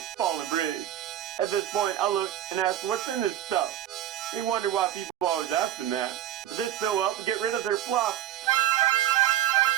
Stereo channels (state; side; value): quieter; left; 12.0 dB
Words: fallen bridge. At this point, I looked and asked, "What's in this stuff?" He wondered why people always asked him that, but this still helped get rid of their fluff.